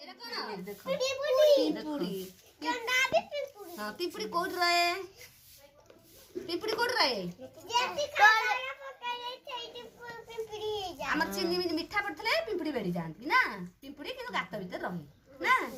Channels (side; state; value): both; identical; correlation 1.00